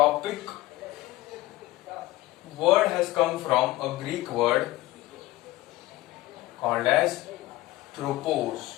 word has come from a Greek word called as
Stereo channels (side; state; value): right; quieter; 17.9 dB